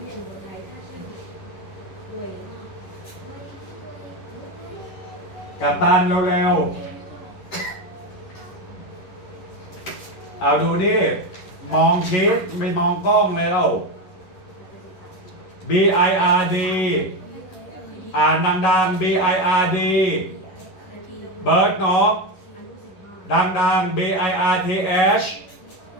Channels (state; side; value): late; right; 11 ms